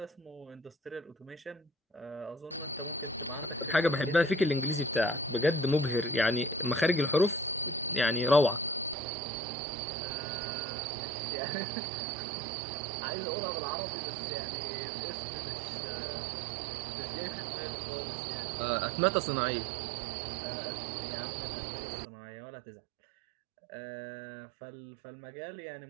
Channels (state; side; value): drops out; left; at 9.0 s